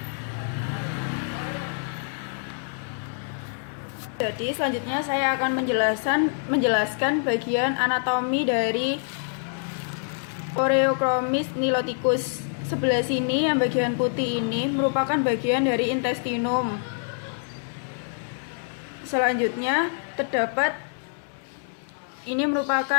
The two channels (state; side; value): silent; right; digital silence